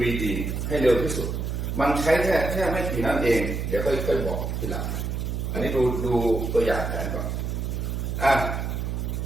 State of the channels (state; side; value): noise; right; hum, 2 dB below the sound